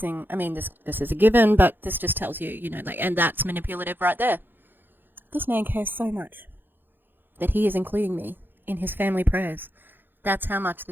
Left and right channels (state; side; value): late; left; 0.096 ms